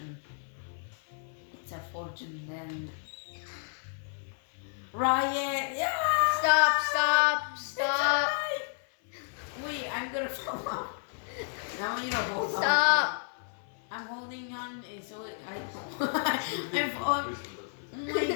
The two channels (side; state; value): right; silent; 57 dB below the other